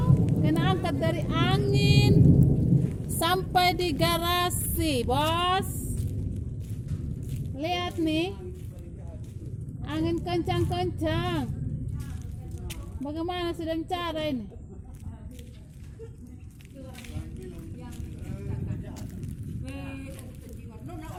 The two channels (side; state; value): both; identical; correlation 1.00